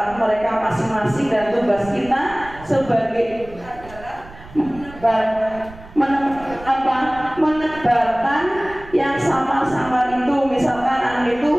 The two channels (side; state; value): right; noise; rumble, 18 dB below the sound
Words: mereka masing-masing, dan tugas kita sebagai menebarkan yang sama-sama itu. Misalkan anak itu